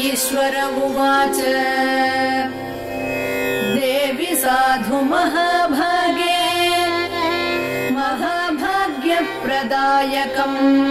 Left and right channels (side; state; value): both; identical; correlation 1.00